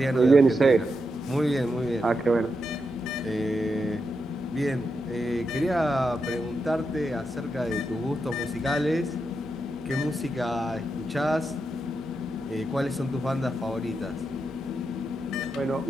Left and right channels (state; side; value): normal; both; correlation 0.85